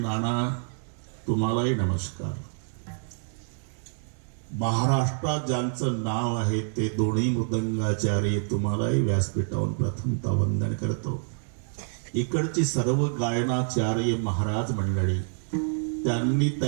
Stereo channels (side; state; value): left; silent; 57 dB below the other